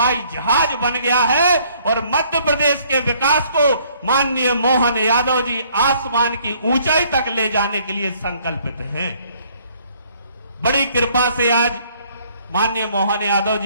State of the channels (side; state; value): both; inverted; correlation -0.62